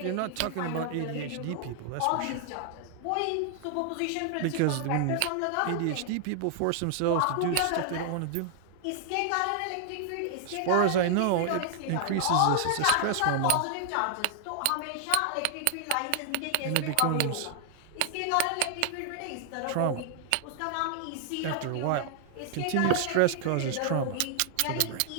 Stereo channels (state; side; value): different; both; correlation 0.00